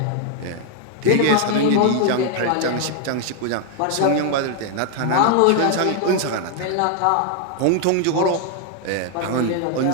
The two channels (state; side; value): different; both; correlation 0.00